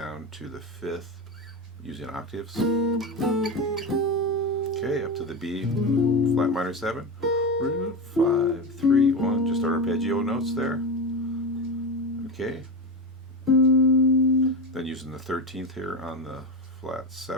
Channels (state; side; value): normal; both; correlation 0.18